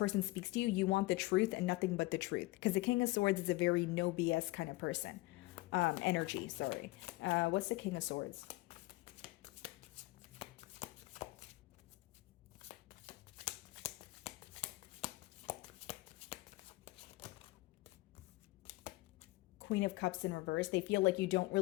speaks to you, you want the truth and nothing but the truth. Because the King of Swords is a very no BS kind of person. Energy, sorry. What's the King of Swords? Queen of Cups in reverse. They feel like you don't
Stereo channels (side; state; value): right; quieter; 20.7 dB